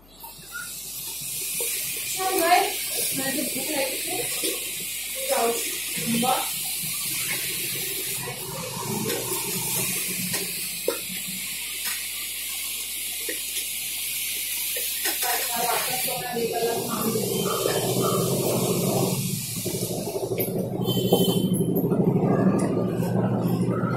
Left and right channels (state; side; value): noise; left; hum, 26 dB below the sound